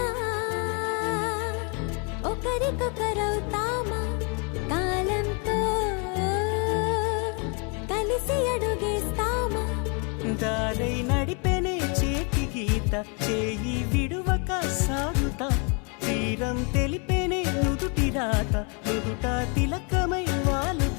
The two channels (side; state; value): right; quieter; 35.0 dB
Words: ఒకరికొకరవుతామా, కాలంతో కలిసి అడుగేస్తామా. దారై నడిపెనే చేతి గీత, చేయి విడువక సాగుతా. తీరం తెలిపెనే నుదుటి రాత, నుదుట తిలకమై